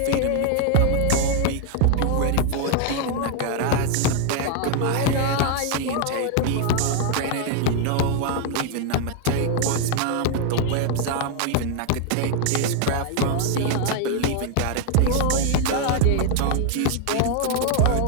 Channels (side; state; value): both; different; correlation 0.00